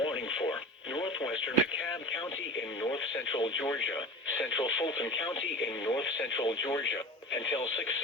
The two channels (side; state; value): both; normal; correlation 0.34